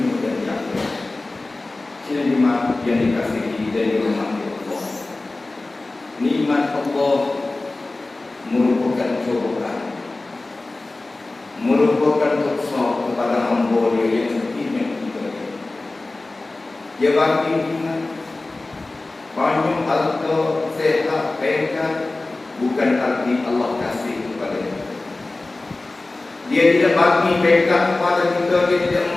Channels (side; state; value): right; quieter; 3.1 dB